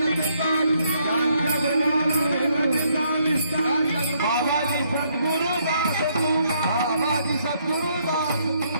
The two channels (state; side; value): inverted; both; correlation -0.71